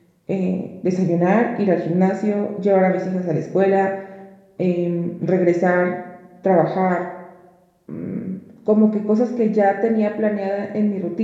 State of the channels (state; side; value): identical; both; correlation 1.00